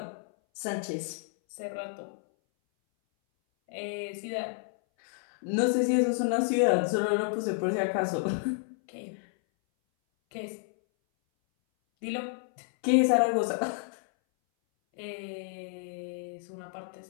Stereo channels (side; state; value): right; silent; 58 dB below the other